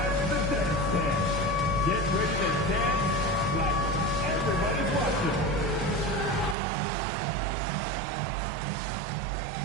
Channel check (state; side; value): drops out; left; at 6.6 s